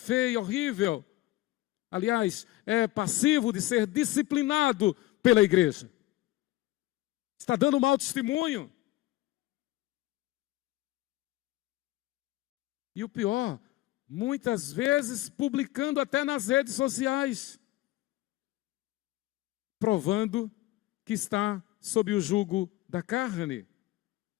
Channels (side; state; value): right; quieter; 17.6 dB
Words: horrível. Aliás, é passivo de ser disciplinado pela igreja. Está dando mau testemunho. E o pior, muitas vezes publicando até nas redes sociais, provando que está sob o jugo da carne.